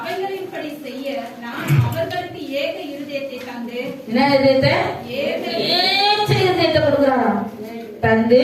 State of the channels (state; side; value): identical; both; correlation 1.00